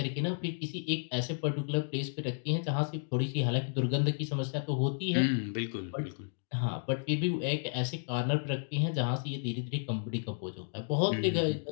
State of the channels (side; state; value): right; silent; digital silence